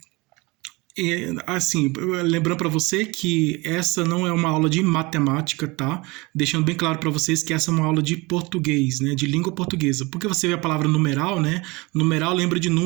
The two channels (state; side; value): quieter; left; 24.5 dB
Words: Assim, lembrando para você que essa não é uma aula de matemática, tá? Deixando bem claro para vocês que essa é uma aula de português, né? De língua portuguesa. Porque você vê a palavra numeral, né? Numeral lembra de